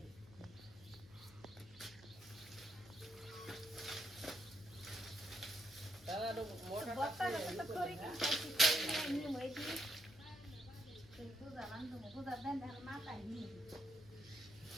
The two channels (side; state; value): left; noise; hum, 21 dB below the sound